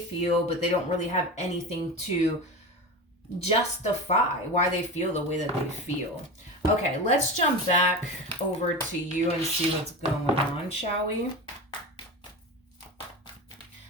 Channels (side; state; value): both; normal; correlation 0.26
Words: but they don't really have anything to justify why they feel the way that they feel. Okay, let's jump back over to you and see what's going on, shall we?